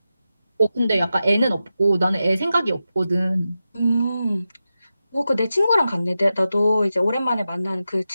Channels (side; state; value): both; inverted; correlation -0.91